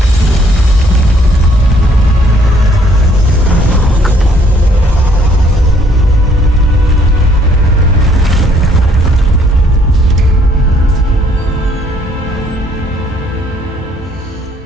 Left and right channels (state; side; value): normal; both; correlation 0.64